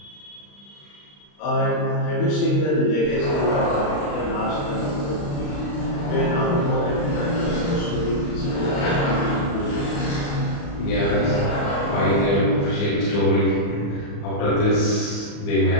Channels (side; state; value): right; late; 35 ms